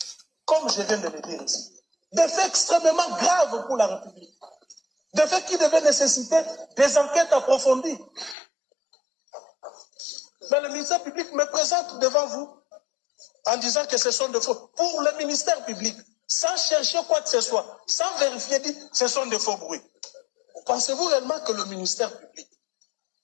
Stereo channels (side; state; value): right; drops out; at 8.3 s